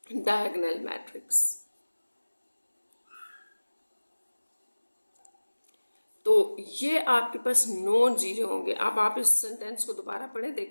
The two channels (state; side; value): inverted; both; correlation -1.00